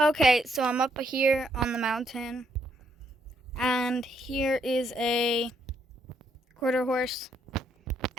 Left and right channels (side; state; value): both; normal; correlation 0.74